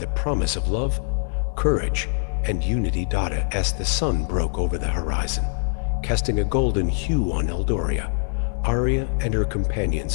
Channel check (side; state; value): right; silent; 63 dB below the other